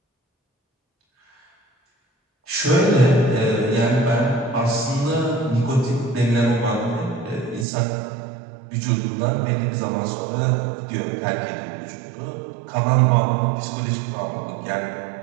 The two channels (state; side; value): drops out; left; at 7.7 s